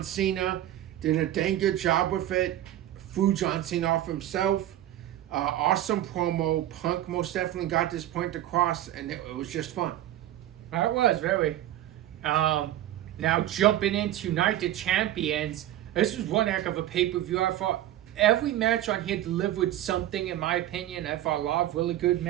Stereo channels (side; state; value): left; quieter; 13.1 dB